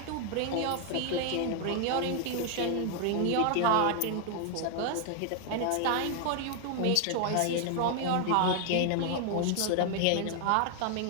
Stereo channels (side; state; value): both; different; correlation 0.00